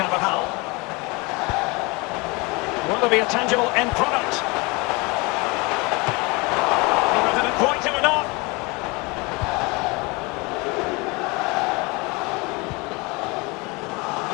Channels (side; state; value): right; quieter; 26.5 dB